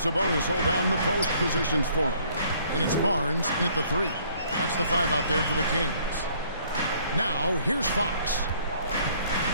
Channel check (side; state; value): both; inverted; correlation -0.61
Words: hold down the post positions for him. And it's Barnes in at the 3. That's the 5 out there for the Kings. Now, here's Fox